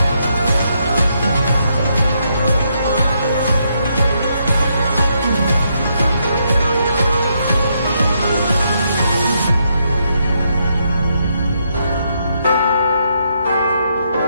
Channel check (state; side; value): inverted; both; correlation -0.77